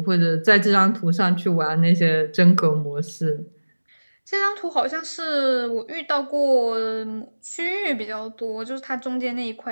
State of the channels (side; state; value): both; inverted; correlation -1.00